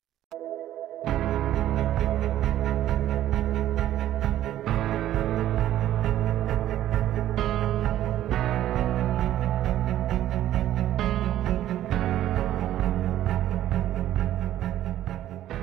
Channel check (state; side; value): quieter; left; 12.7 dB